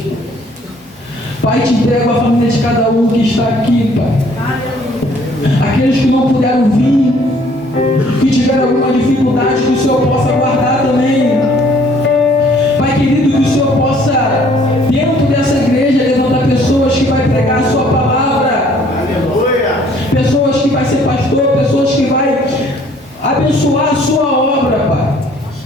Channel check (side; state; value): both; normal; correlation 0.59